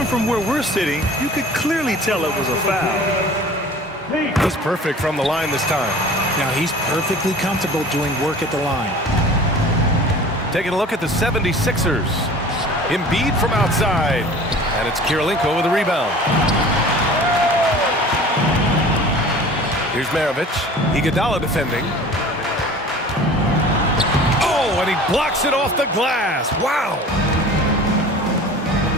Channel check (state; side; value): normal; both; correlation 0.43